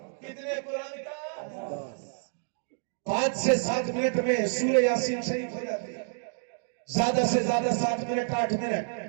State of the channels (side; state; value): left; silent; digital silence